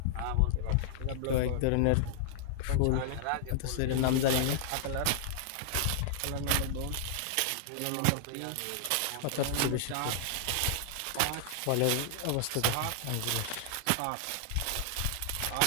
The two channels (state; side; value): different; both; correlation -0.01